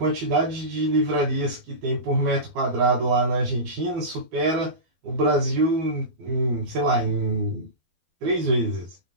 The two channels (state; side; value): late; left; 12 ms